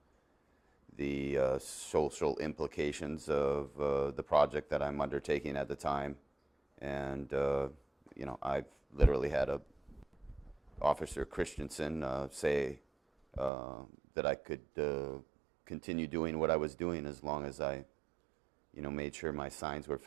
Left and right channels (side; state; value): left; drops out; at 13.5 s